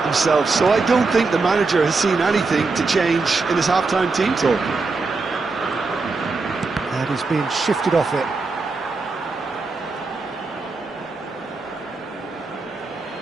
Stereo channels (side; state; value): left; quieter; 4.0 dB